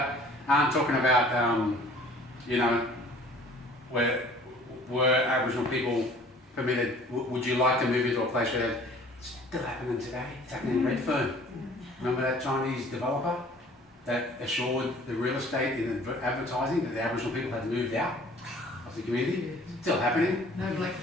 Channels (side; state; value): both; normal; correlation 0.51